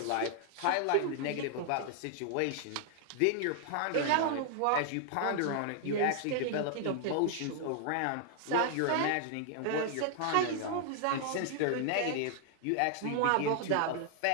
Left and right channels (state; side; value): different; both; correlation 0.00